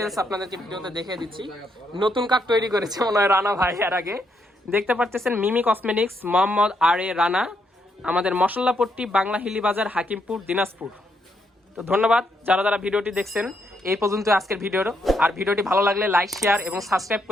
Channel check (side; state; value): both; normal; correlation 0.77